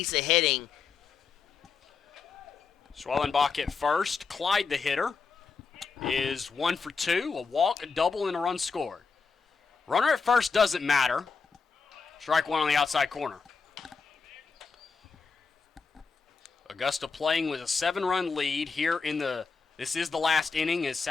of hitting. Schwellenbach at first. Clyde, the hitter, is 1 for 2. A walk, a double, and a run scored. Runner at first doesn't matter. Strike one on the outside corner. Augusta playing with a 7-run lead here in the... This is the last inning, as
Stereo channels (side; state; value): right; quieter; 5.0 dB